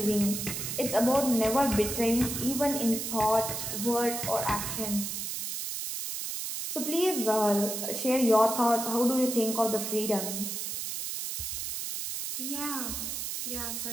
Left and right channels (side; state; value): right; noise; hiss, 4 dB below the sound